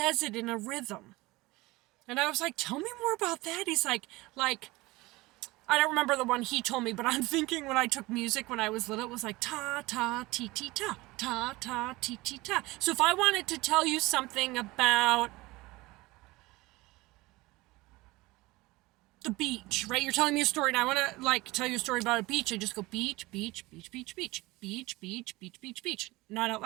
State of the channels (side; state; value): left; quieter; 21.2 dB